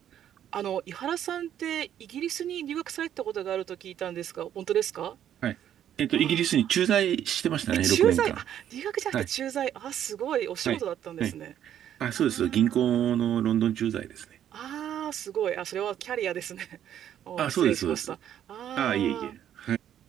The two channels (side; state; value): left; quieter; 10.4 dB